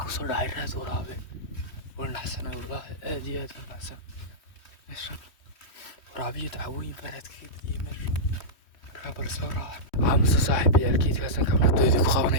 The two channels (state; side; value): late; right; 3.1 ms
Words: kusoo dhacay raad waraabe waa naxsanay wallaahi aad iyo aad naxsan meeshan waraabiyo dacwooyin baaraad kaga badiyay meesha markaa bal soo raaca aamusa saaxiib yaalkeedkaasaan kamardoodii ku